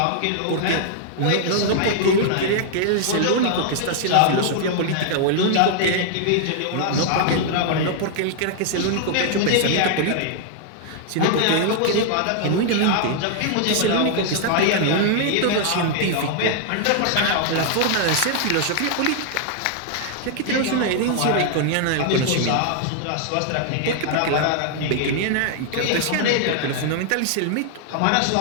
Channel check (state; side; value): different; both; correlation 0.00